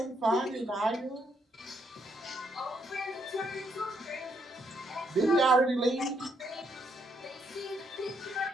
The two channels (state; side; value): normal; both; correlation 0.74